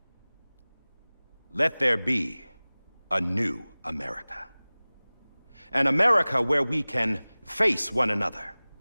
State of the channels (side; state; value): both; inverted; correlation -0.99